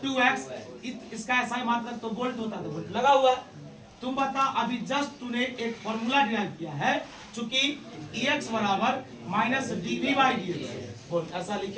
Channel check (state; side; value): identical; both; correlation 1.00